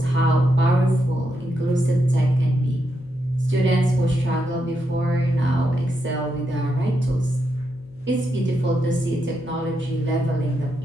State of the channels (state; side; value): noise; left; hum, 25 dB below the sound